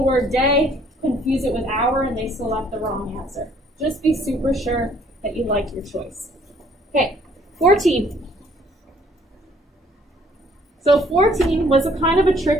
word day, confuse it with hour, and they select the wrong answer. Just be super sure that you like your choice. Okay, 14. So 14 was a kind of a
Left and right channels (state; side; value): normal; both; correlation 0.61